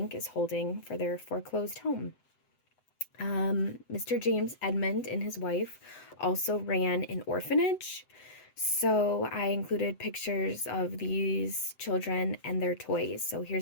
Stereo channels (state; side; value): late; right; 7.8 ms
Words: is holding for their foreclosed home. Mr. James Edmond and his wife also ran an orphanage. So I included pictures of these children and their toys. So